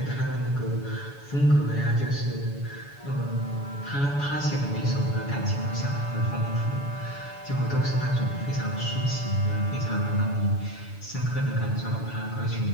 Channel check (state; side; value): late; right; 7.0 ms